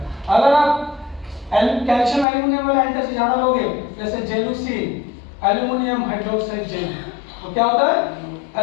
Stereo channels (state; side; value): drops out; right; at 2.2 s